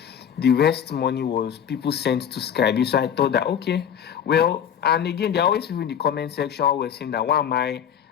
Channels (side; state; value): right; quieter; 8.7 dB